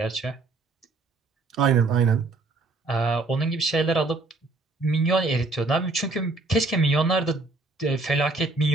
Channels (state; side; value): quieter; left; 3.4 dB